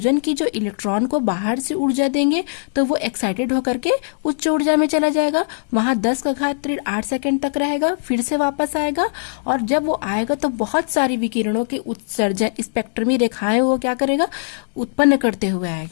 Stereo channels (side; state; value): right; silent; 66 dB below the other